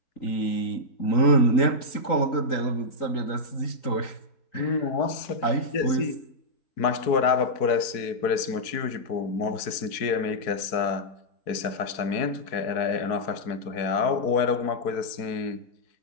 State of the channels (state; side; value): late; right; 4.6 ms